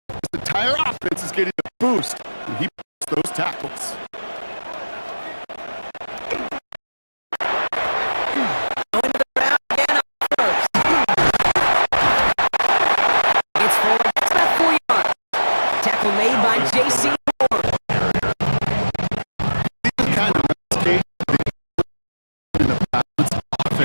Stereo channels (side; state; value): both; inverted; correlation -1.00